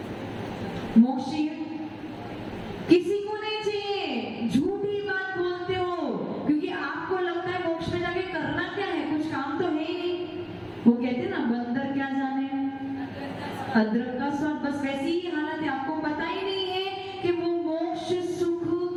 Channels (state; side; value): identical; both; correlation 1.00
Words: मोक्ष चाहिए? किसी को नहीं चाहिए। झूठी बात बोलते हो, क्योंकि आपको लगता है मोक्ष में जाके करना क्या है, कुछ काम तो है ही नहीं। वो कहते हैं ना, बंदर क्या जाने अदरक का स्वाद, बस वैसी ही हालत है। आपको पता ही नहीं है कि वो मोक्ष सुख